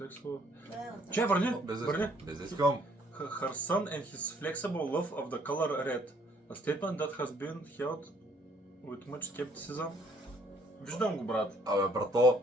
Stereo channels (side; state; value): both; normal; correlation 0.64